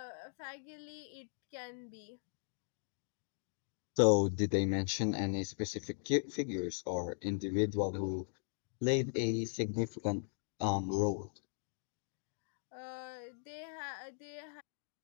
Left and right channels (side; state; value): right; silent; digital silence